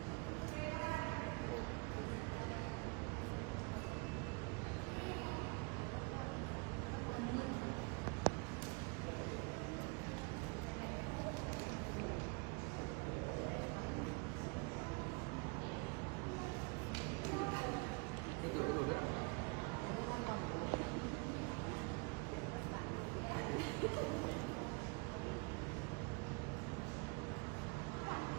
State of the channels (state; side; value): quieter; left; 31.9 dB